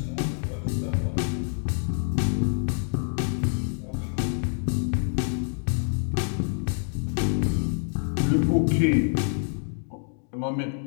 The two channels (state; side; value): silent; right; 57 dB below the other